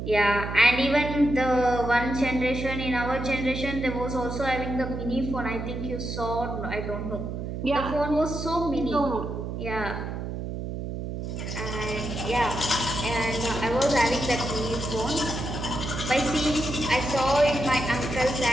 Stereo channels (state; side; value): noise; right; hum, 5 dB below the sound